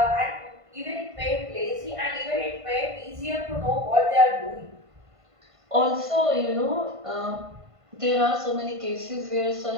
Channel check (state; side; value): late; left; 1.5 ms